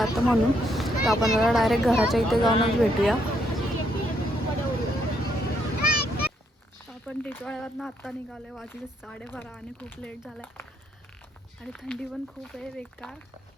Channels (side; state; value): both; normal; correlation 0.74